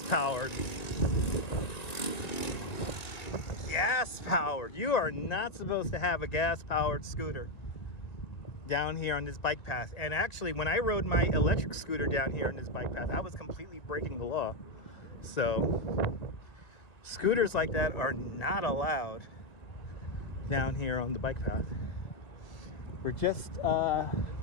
powered. Gas powered. You are not supposed to have a gas powered scooter down here on this bike path. And actually, when I rode my electric scooter down here on this bike path, I was completely breaking the law. So scooters like that are not allowed down here on the bike path. We're just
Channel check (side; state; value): right; late; 2.0 ms